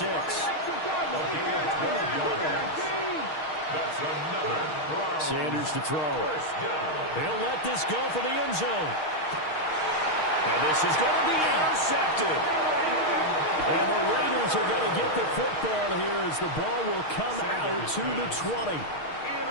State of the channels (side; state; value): right; late; 6.4 ms